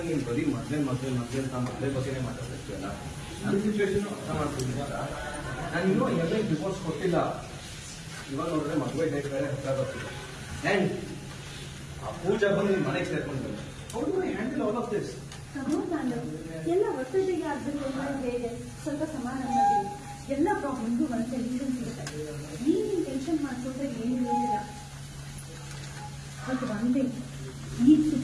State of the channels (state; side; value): identical; both; correlation 1.00